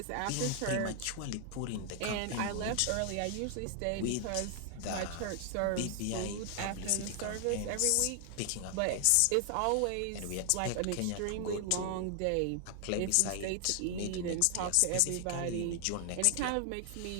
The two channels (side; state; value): both; different; correlation 0.00